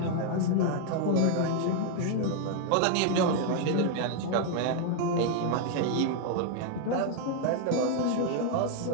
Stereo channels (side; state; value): both; different; correlation 0.00